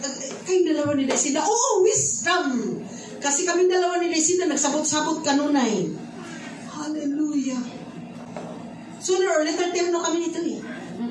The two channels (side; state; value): both; identical; correlation 1.00